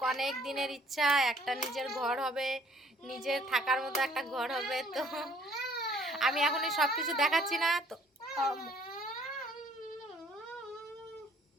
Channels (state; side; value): normal; both; correlation 0.60